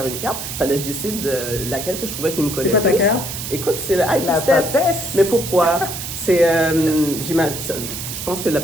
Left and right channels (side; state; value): right; noise; hiss, 7 dB below the sound